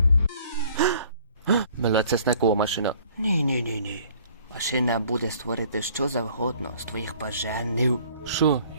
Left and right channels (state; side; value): inverted; both; correlation -0.56